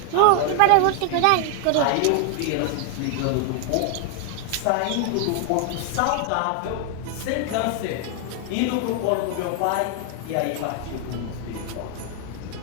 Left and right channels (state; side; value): different; both; correlation 0.00